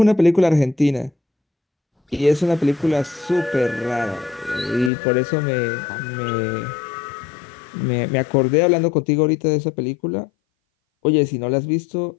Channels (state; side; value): drops out; right; at 4.9 s